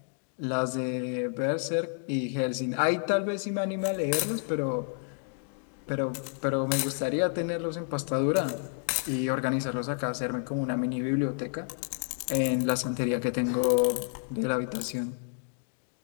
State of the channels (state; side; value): silent; right; 58 dB below the other